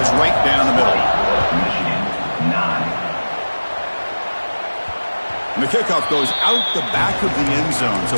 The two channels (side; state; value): both; inverted; correlation -1.00